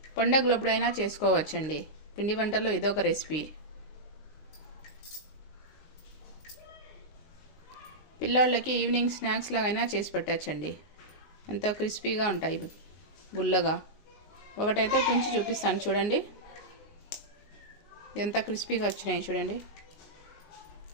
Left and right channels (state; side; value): late; right; 19 ms